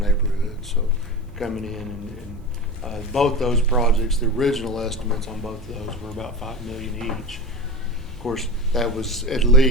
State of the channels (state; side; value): normal; both; correlation 0.29